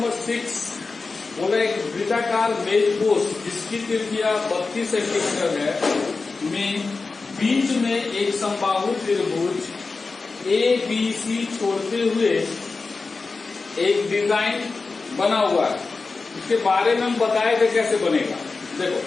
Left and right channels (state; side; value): quieter; right; 4.1 dB